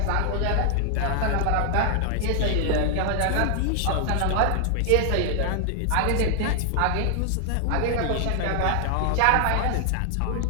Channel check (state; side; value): different; both; correlation 0.00